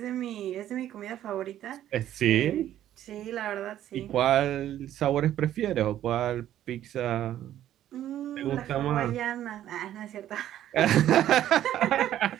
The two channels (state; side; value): quieter; left; 12.0 dB